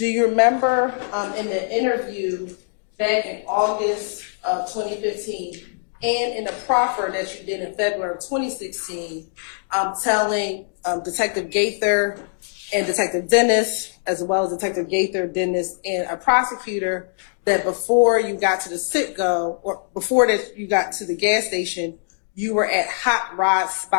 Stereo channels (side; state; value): right; silent; digital silence